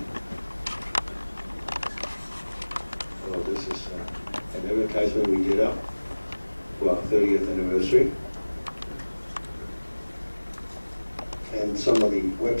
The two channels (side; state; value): both; inverted; correlation -1.00